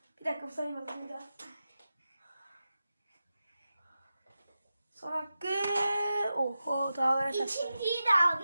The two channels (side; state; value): both; inverted; correlation -0.92